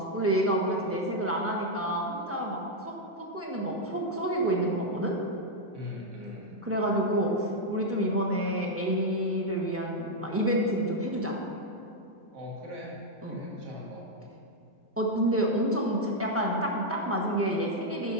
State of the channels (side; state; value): both; normal; correlation -0.01